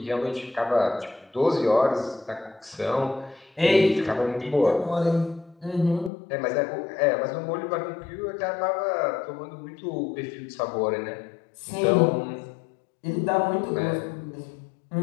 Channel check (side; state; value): right; drops out; at 6.1 s